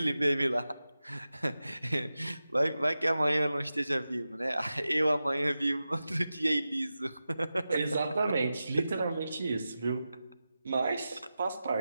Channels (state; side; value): inverted; both; correlation -0.93